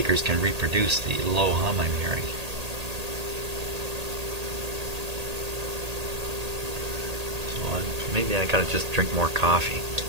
can reproduce the low hum I'm hearing. So maybe I gotta just drink more coffee.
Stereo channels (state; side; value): late; left; 1.8 ms